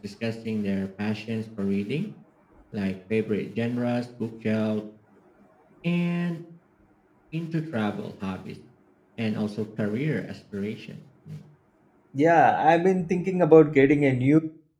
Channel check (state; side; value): identical; both; correlation 1.00